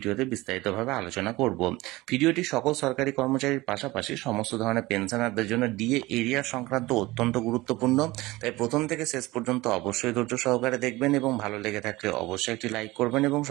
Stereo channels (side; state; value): left; quieter; 20.1 dB